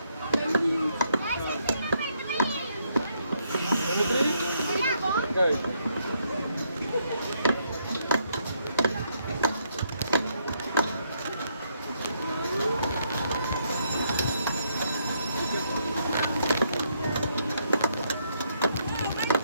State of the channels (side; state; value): both; inverted; correlation -0.74